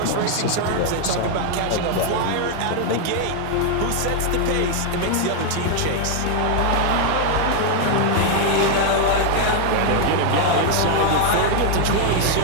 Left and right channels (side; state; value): both; different; correlation 0.00